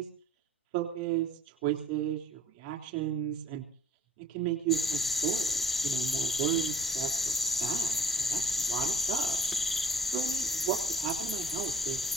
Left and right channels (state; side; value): normal; both; correlation 0.53